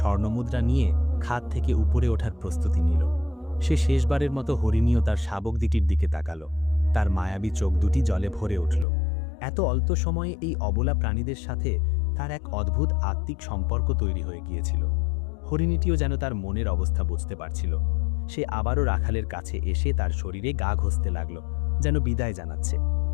নিয়ে খাদ থেকে উপরে ওঠার প্রস্তুতি নিল। সে শেষবারের মতো হরিণীয় তার শাবক দুটির দিকে তাকালো। তার মায়াবী চোখ দুটি জলে ভরে উঠল। এত অল্প সময়ে এই অবলা প্রাণীদের সাথে তার এক অদ্ভুত আত্মিক সম্পর্ক তৈরি হয়ে গিয়েছিল। হরিণীটিও যেন তার মনের অবস্থা বুঝতে পারছিল। সে আবারও রাখালের কাছে এসে তার শরীরে গা ঘষতে লাগল, যেন বিদায় জানাচ্ছে।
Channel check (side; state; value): right; drops out; at 8.8 s